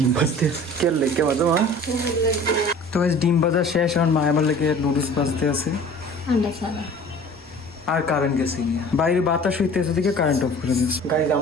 ভাজতে কে লেগে বাজো মা। তো গাইস ডিম ভাজা শেষ, এখন মা আমার লেগে নুডলস ভাজতে আছে। আন্ডা ছাড়া আর কারেন্ট গেছে গিয়ে, বাইরে বাতাস হইতেছে দিকে কারেন্ট অফ করে দিয়েছে। গাইজ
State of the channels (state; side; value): normal; both; correlation 0.45